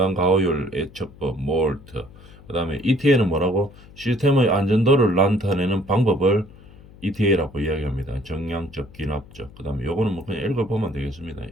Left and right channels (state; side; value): noise; left; hum, 21 dB below the sound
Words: 가호율 예측법, 몰트, 그 다음에 ETA는 뭐라고? 시스템의 안전도를 나타내는 방법을 ETA라고 이야기합니다. 정량적, 기납적. 그 다음에 요거는 뭐 그냥 읽어보면 되겠습니다.